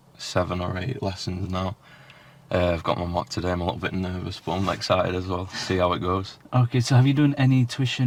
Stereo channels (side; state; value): both; identical; correlation 1.00